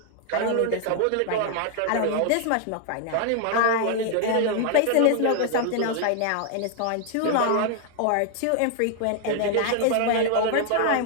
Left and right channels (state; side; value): different; both; correlation 0.00